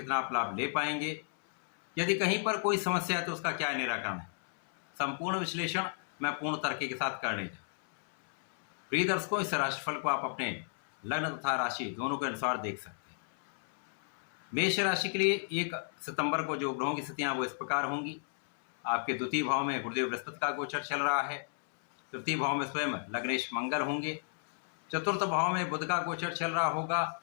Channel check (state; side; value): silent; right; 56 dB below the other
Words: आप लाभ ले पाएंगे, यदि कहीं पर कोई समस्या है तो उसका क्या निराकरण है, संपूर्ण विश्लेषण मैं पूर्ण तर्क के साथ करने जा। प्रिय दर्शकों, इस राशिफल को आप अपने लग्न तथा राशि दोनों के अनुसार देख सकते हैं। मेष राशि के लिए 1 सितंबर को जो ग्रहों की स्थितियां वो इस प्रकार होंगी। आपके द्वितीय भाव में गुरुदेव बृहस्पति का गोचर चल रहा है। तृतीय भाव में स्वयं लग्नेश मंगल होंगे। चतुर्थ भाव में बुध का गोचर चल रहा होगा।